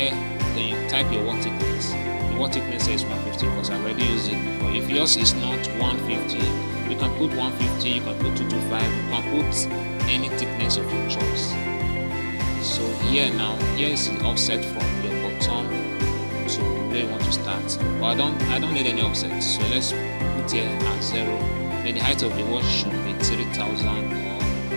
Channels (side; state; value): both; inverted; correlation -1.00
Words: then you type your wall thickness. The wall thickness is 150 because I already used it before. If yours is not 150, you can put 150, you can put 225, you can put any thickness of your choice. So here is the offset from your bottom to where you want to start. But I don't need any offset, so let's put here at 0. Then the height of the wall should be 3000 or